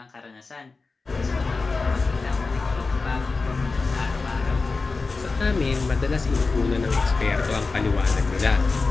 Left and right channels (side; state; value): right; quieter; 4.0 dB